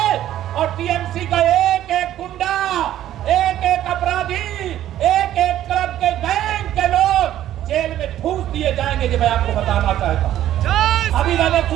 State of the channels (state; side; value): quieter; left; 12.4 dB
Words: और टीएमसी का एक एक गुंडा जाएंगे, जो मैं आपको बताना चाहता हूँ। अभी मैंने